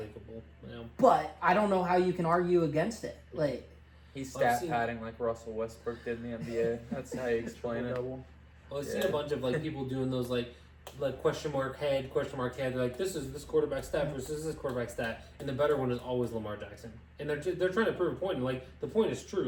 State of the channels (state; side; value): identical; both; correlation 1.00